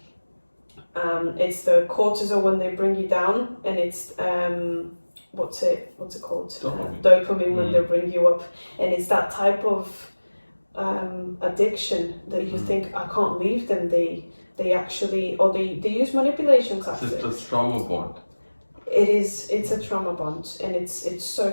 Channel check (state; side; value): inverted; both; correlation -1.00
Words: cortisol when they bring you down, and it's what's it called? Dopamine when they bring you up, and it's that type of addiction that you think, I can't leave them. They actually, or they use manipulation tactics. It's a trauma bond. It's a trauma bond, and it's so